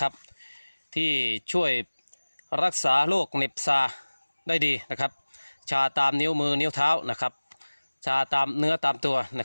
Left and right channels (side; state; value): both; inverted; correlation -1.00